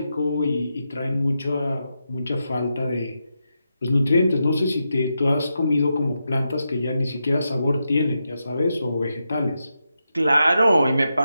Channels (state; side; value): inverted; both; correlation -0.87